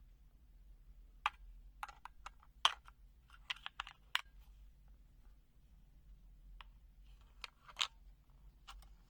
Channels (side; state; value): both; identical; correlation 1.00